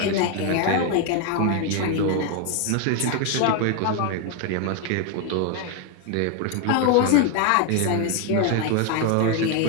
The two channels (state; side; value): different; both; correlation 0.01